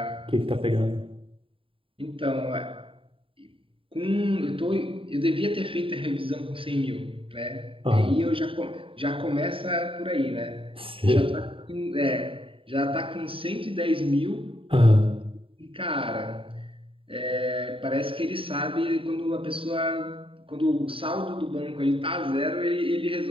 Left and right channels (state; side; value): late; left; 0.26 ms